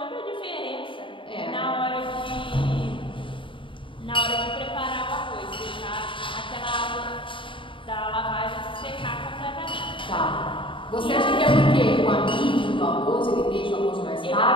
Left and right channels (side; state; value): right; late; 0.25 ms